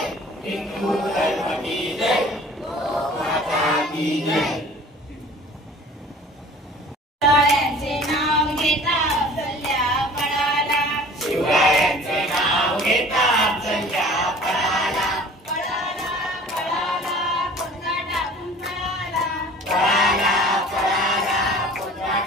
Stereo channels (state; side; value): normal; both; correlation 0.46